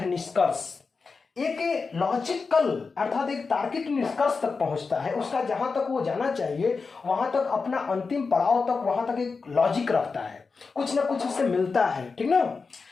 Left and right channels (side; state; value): right; quieter; 4.6 dB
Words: निष्कर्ष। एक लॉजिकल अर्थात एक तार्किक निष्कर्ष तक पहुंचता है, उसका जहां तक वो जाना चाहिए वहां तक, अपना अंतिम पड़ाव तक, वहां तक एक लॉजिक रखता है, कुछ ना कुछ उससे मिलता है, ठीक ना,